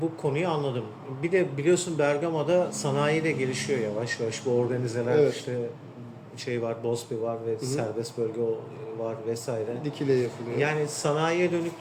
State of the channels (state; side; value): identical; both; correlation 1.00